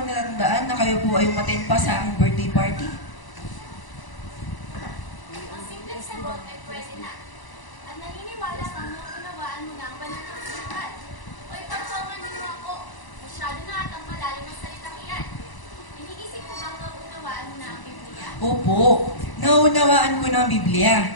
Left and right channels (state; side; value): late; right; 1.0 ms